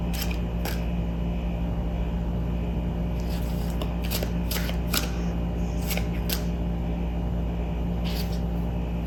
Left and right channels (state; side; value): identical; both; correlation 1.00